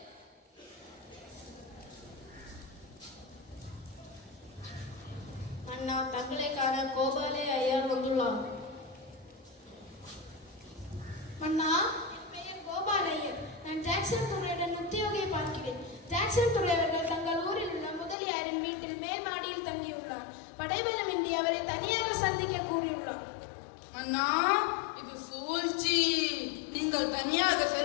அண்ணா, தங்களை காண கோபாலே ஐயர் வந்துள்ளார். அண்ணா, என் பெயர் கோபால் ஐயர். நான் ஜாக்சன் துறையுடன் உத்தியோகியை பார்க்கிறேன். ஜாக்சன் துறை அவர்கள் தங்கள் ஊரில் உள்ள முதலியாரின் வீட்டில் மேல் மாடியில் தங்கியுள்ளார். படைபலமின்றி அவரை தனியாக சந்திக்க கூறியுள்ளார். அண்ணா, இது சூழ்ச்சி. நீங்கள் தனியாக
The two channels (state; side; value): drops out; right; at 18.2 s